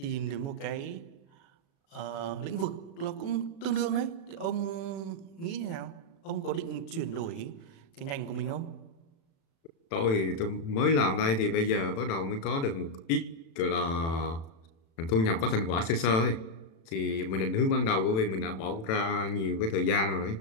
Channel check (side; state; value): right; late; 36 ms